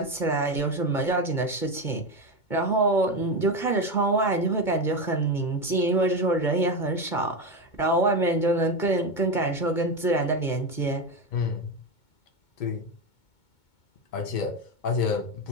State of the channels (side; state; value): right; late; 2.2 ms